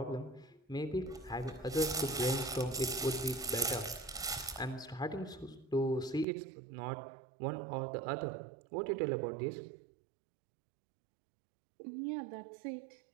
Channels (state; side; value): drops out; left; at 6.2 s